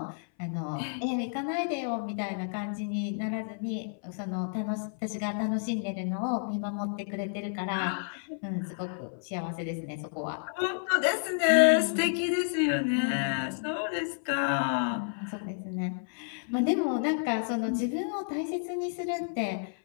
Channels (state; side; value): silent; right; 57 dB below the other